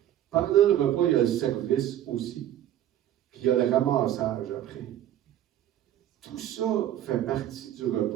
Pendant le repas, il y a le service aussi. Puis il y a le ramassage après. Tout ça fait partie du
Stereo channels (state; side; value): quieter; left; 11.7 dB